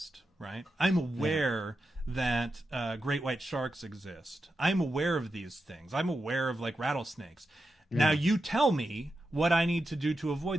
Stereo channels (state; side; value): normal; both; correlation 0.89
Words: right? I'm aware that great white sharks exist. I'm aware of these things. I'm aware of like rattlesnakes. Now you tell me what I need to do to